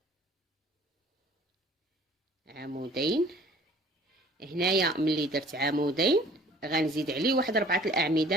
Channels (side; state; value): both; normal; correlation 0.52